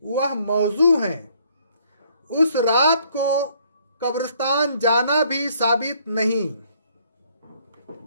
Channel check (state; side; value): inverted; both; correlation -0.64